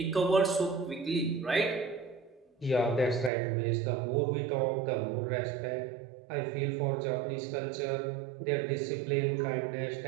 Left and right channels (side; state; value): left; drops out; at 3.3 s